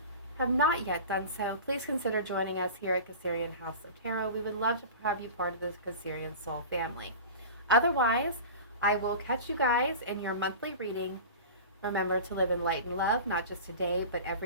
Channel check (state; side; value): inverted; both; correlation -0.34